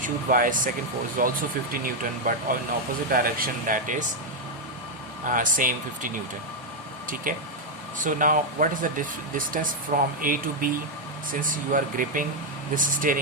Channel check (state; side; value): normal; both; correlation 0.00